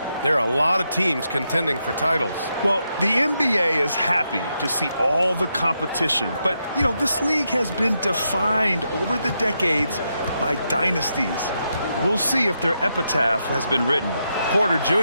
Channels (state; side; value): inverted; both; correlation -0.83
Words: there are a lot of teams contending for titles. Well, the NBA is happy to see all the competition. But, you know, this league has been defined over the decades by dynasties. We'll see if their epitaph has been written. Porter